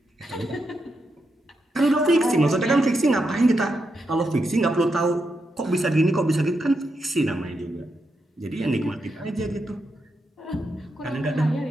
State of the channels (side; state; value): both; normal; correlation 0.84